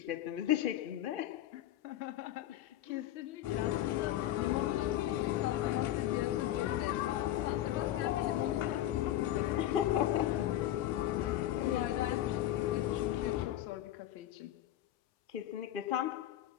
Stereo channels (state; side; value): quieter; right; 13.2 dB